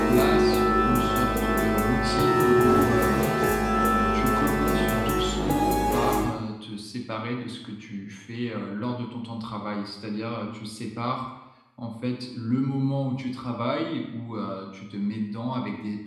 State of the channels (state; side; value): identical; both; correlation 1.00